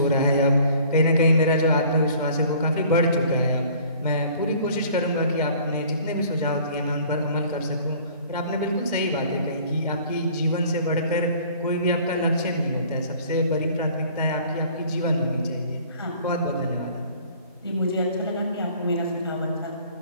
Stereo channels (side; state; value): both; inverted; correlation -0.52